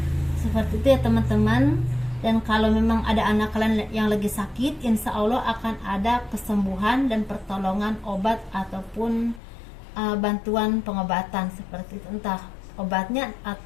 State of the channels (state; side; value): drops out; right; at 9.4 s